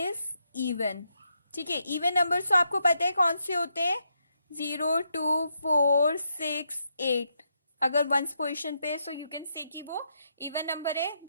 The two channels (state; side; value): inverted; both; correlation -0.80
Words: is even. ठीक है, even numbers तो आपको पता है कौन से होते हैं? 0 2 4 6 8. अगर वंस पोजीशन पे, सो यू कैन से कि वो इवन नंबर है,